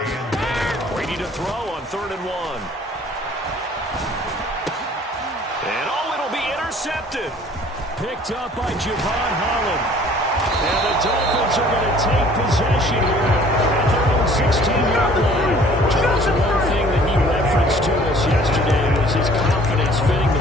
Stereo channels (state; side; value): normal; both; correlation 0.53